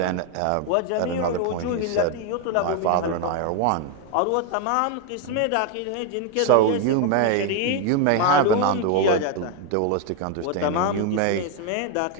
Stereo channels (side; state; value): both; different; correlation 0.01